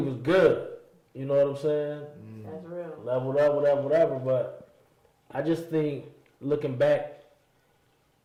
good. You know what I'm saying? That's real. Leveled up, whatever. But I just think looking back,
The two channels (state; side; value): identical; both; correlation 1.00